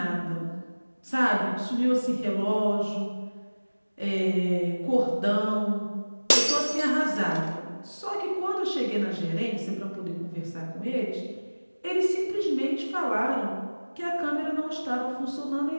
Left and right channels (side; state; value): both; inverted; correlation -1.00